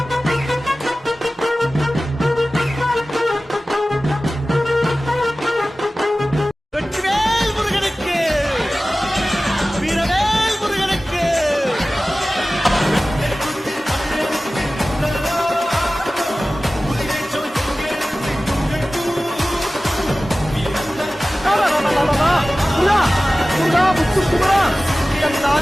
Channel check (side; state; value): both; normal; correlation 0.97